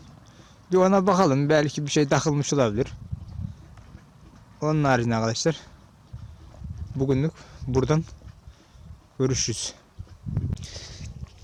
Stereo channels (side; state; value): both; identical; correlation 1.00